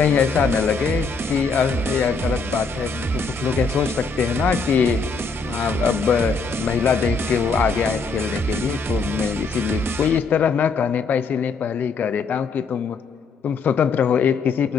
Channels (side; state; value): right; quieter; 4.6 dB